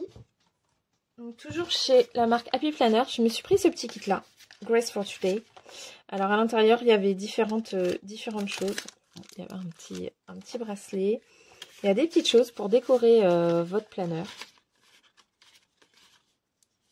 donc toujours chez la marque Happy Planner, je me suis pris ce petit kit-là, Grace for Today. Alors, à l'intérieur, il y avait différentes choses. Il y avait un petit bracelet. Il y a des petites choses pour décorer votre planeur.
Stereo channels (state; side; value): identical; both; correlation 1.00